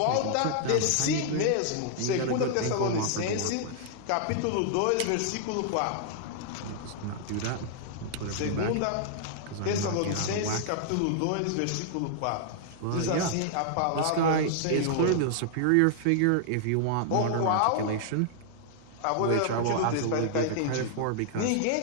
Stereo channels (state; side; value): different; both; correlation -0.01